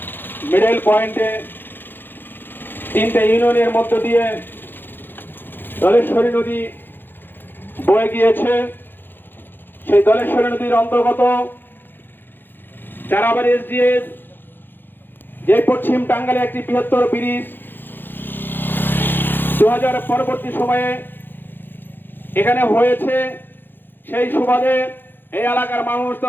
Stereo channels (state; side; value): late; right; 0.097 ms